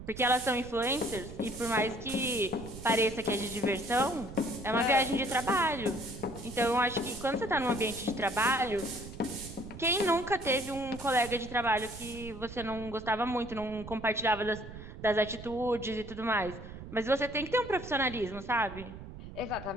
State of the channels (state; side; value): noise; right; rumble, 13 dB below the sound